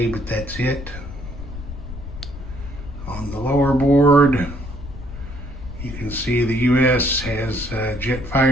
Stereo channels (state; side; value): noise; left; rumble, 11 dB below the sound